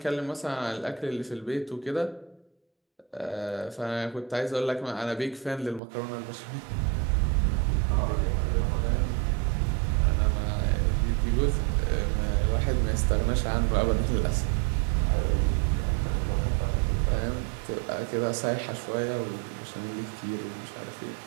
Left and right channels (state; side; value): drops out; left; at 5.8 s